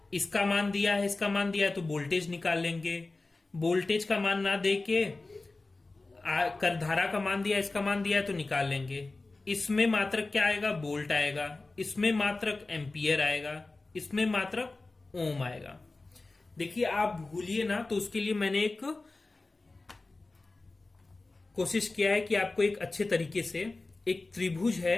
इसका मान दिया है, इसका मान दिया है, तो वोल्टेज निकाल लेंगे। वोल्टेज का मान ना दे के धारा का मान दिया, इसका मान दिया है, तो निकाल लेंगे। इसमें मात्रक क्या आएगा? वोल्ट आएगा। इसमें मात्रक एम्पियर आएगा। इसमें मात्रक ओम आएगा। देखिए आप भूलिए ना, तो उसके लिए मैंने एक कोशिश किया है कि आपको एक अच्छे तरीके से, एक त्रिभुज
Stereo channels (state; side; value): quieter; right; 3.3 dB